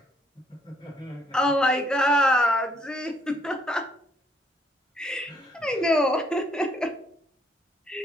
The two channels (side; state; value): both; normal; correlation 0.68